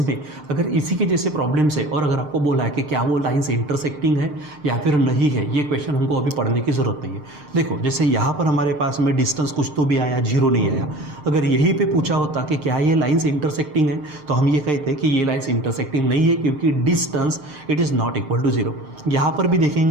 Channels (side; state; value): left; late; 6.6 ms